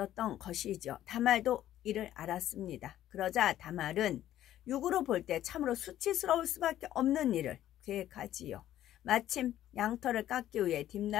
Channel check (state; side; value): quieter; right; 12.6 dB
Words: 것이죠. 다말도 이를 알았습니다. 그러자 다말은 육으로 볼 때 참으로 수치스러울 수밖에 없는 일을 계획하지요. 마침 양털을 깎기 위해